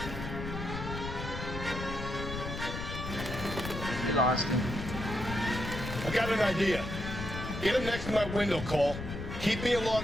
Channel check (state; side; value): noise; left; rumble, 7 dB below the sound